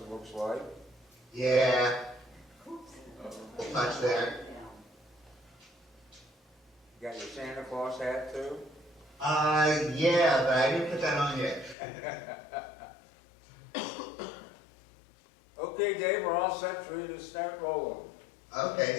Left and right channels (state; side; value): drops out; right; at 11.8 s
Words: looks like. Yeah. Much there. You got your Santa Claus hat too? Yeah, but I didn't put that on yet. Okay, Dave, we're all set for you to start rolling.